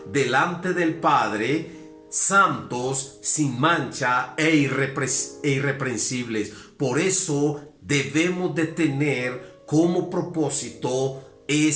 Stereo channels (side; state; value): both; identical; correlation 1.00